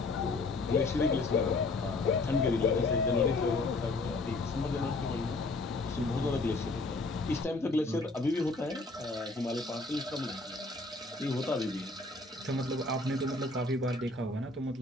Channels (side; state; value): right; quieter; 3.2 dB